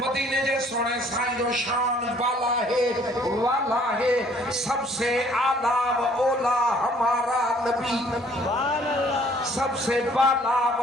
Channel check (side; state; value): both; normal; correlation 0.59